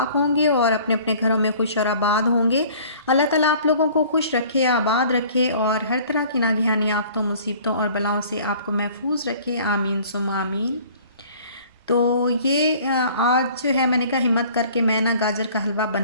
होंगे और अपने अपने घरों में खुश और आबाद होंगे। अल्लाह ताला आप लोगों को खुश रखे, आबाद रखे और हर तरह की नागहानी आफतों, मुसीबतों और बलाओं से आपको महफूज रखे। आमीन सुम्मा आमीन। तो ये आज जो है मैंने कहा हिम्मत करके मैं ना गाजर का हलवा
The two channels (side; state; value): both; inverted; correlation -0.51